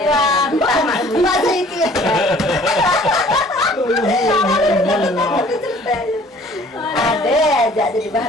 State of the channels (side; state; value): both; normal; correlation 0.53